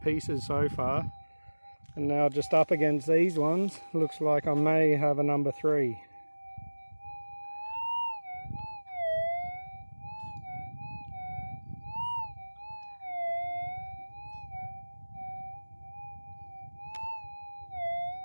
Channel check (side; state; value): both; inverted; correlation -1.00